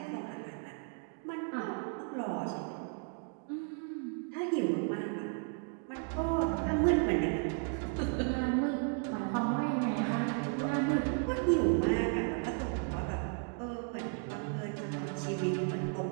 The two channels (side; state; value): left; quieter; 39.5 dB